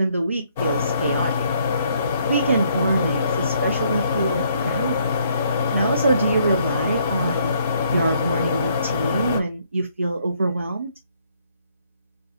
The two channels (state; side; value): inverted; both; correlation -0.68